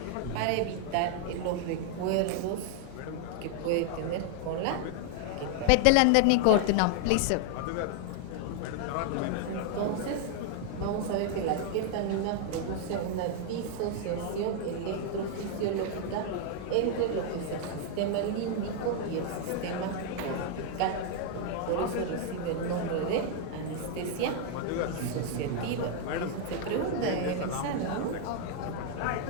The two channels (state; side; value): different; both; correlation 0.00